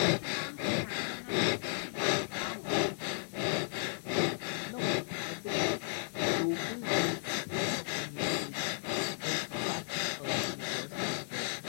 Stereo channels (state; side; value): silent; right; digital silence